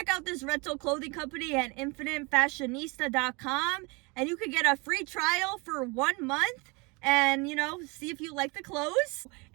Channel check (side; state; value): left; quieter; 28.5 dB